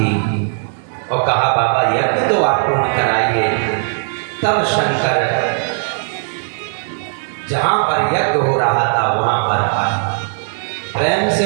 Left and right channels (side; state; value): left; silent; digital silence